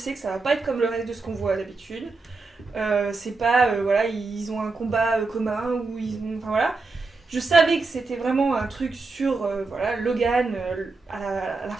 que ça va pas être comme le reste de ce qu'on voit d'habitude. C'est pas ils ont un combat commun ou ils ont voilà. Je savais que c'était vraiment un truc sur Logan à la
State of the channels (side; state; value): left; quieter; 3.9 dB